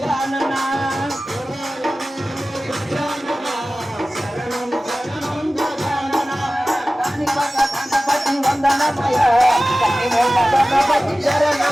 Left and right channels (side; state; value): both; normal; correlation 0.96